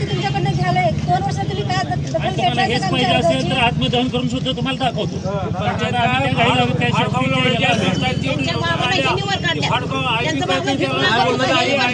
तुम्हाला हेच पाहिजे असेल तर आत्मदहन करून सुद्धा तुम्हाला दाखवतो.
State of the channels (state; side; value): identical; both; correlation 1.00